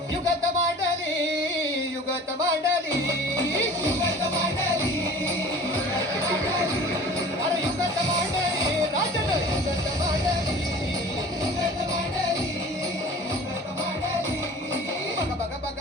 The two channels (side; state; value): both; normal; correlation 0.43